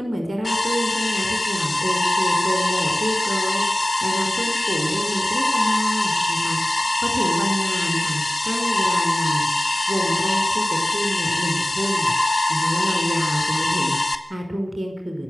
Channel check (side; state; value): both; normal; correlation 0.96